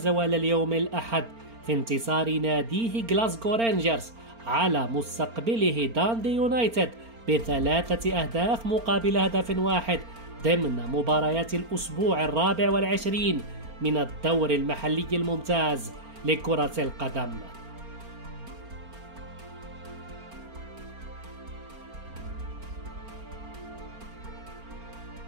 اليوم الأحد في انتصار ناديه غلاسكو رينجرز على مستقبله داندي يونايتد ب3 أهداف مقابل هدف واحد ضمن مباريات الأسبوع 24 من الدور المحلي الممتاز لكرة القدم.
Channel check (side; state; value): left; late; 4.4 ms